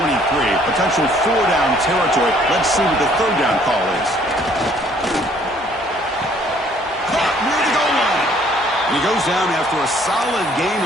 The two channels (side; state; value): both; normal; correlation 0.60